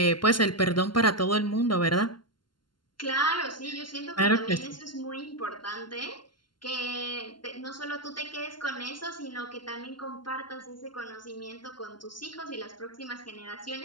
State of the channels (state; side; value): late; right; 0.71 ms